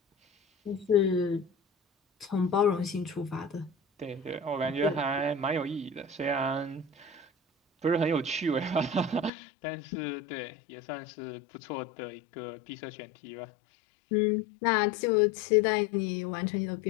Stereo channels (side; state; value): right; drops out; at 9.3 s